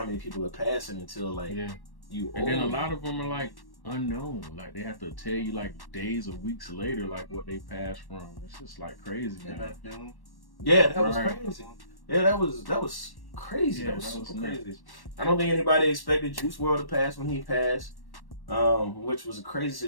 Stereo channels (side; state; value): right; late; 1.1 ms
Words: many people are passing until, like, you old. And then a lot of them are, like, unknown. Like, they have to tell you, like, days or weeks later, like, what they passed from. It's just, like, crazy, man. Yeah, that was crazy. Yeah, that was crazy. Yeah, that was that super was crazy. I don't think anybody expected Juice WRLD to pass when he passed, which was a crazy